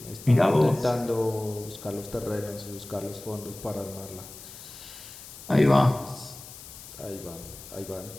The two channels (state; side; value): noise; left; hiss, 15 dB below the sound